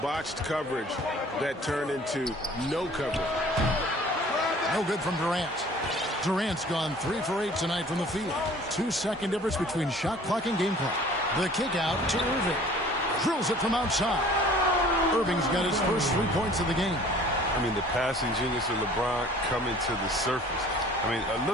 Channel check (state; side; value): normal; both; correlation 0.50